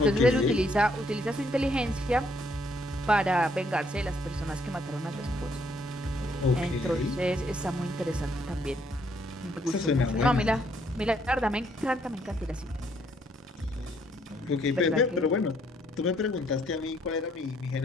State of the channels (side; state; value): both; normal; correlation 0.69